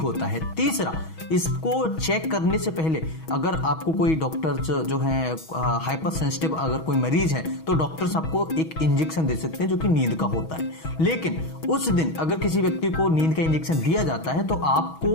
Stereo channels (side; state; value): right; late; 6.2 ms